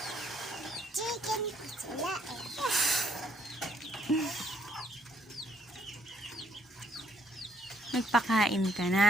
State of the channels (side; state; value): both; normal; correlation 0.70